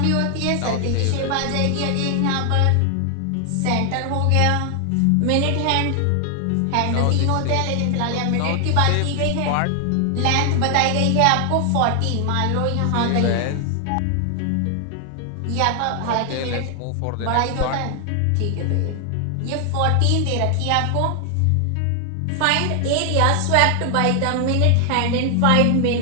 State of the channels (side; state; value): both; different; correlation 0.00